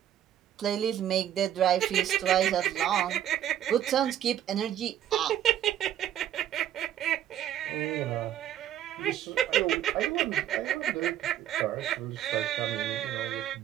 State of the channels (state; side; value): quieter; left; 11.1 dB